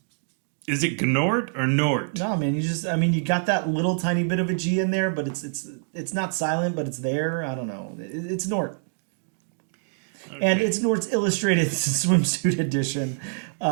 is it Gnort or Nort? No, man, you got that little tiny bit of a G in there, but it's not silent, but it's there. I don't know. It's Gnort. Okay. And it's Gnort's Illustrated Swimsuit Edition.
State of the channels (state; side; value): silent; left; digital silence